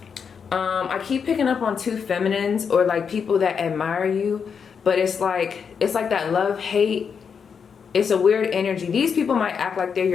I keep picking up on two feminines, or like people that admire you, but it's like that love-hate. It's a weird energy. These people might act like they're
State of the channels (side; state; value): right; quieter; 6.5 dB